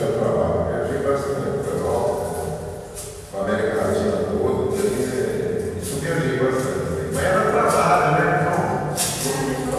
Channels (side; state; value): both; identical; correlation 1.00